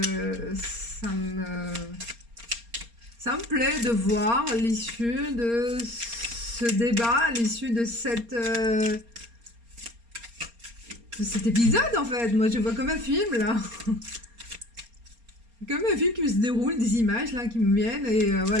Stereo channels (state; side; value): late; left; 4.3 ms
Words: ça me plaît de voir l'issue de ce débat, l'issue de cet épisode en fait. Moi je vois comme un film là. Comme un film qui se déroule, des images là qui me viennent et